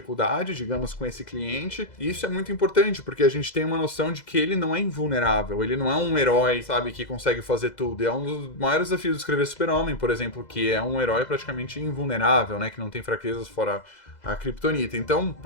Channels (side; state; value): right; late; 2.0 ms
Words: digamos, com esse cliente. E isso é muito importante, porque a gente tem uma noção de que ele não é invulnerável, ele não é um herói, sabe, que consegue fazer tudo. É um dos maiores desafios de escrever Super-Homem, por exemplo, que é um herói praticamente invulnerável, né, que não tem fraquezas fora a Kryptonita. Então,